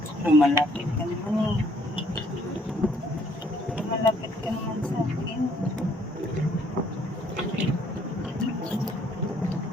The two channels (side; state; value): both; normal; correlation 0.64